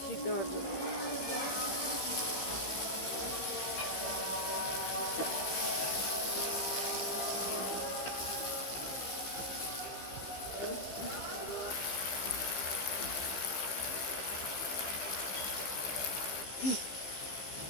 সিদ্ধ হওয়ার জন্য।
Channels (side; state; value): right; late; 15 ms